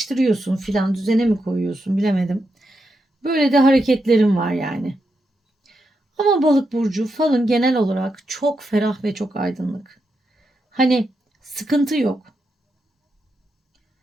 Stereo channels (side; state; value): both; normal; correlation 0.84